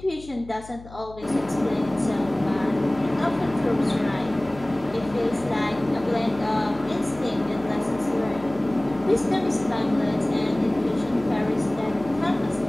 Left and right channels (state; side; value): noise; left; hum, 18 dB below the sound